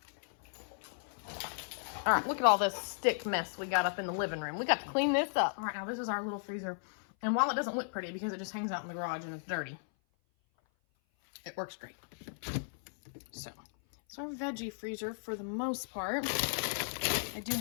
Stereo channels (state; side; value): silent; right; 54 dB below the other